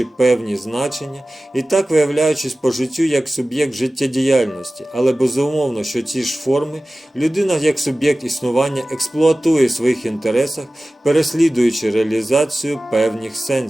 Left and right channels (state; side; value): normal; both; correlation 0.97